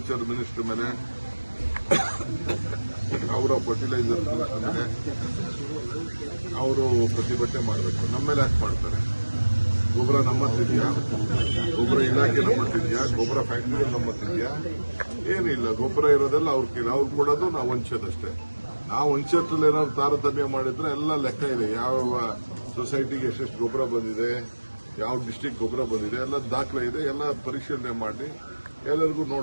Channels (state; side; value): inverted; both; correlation -1.00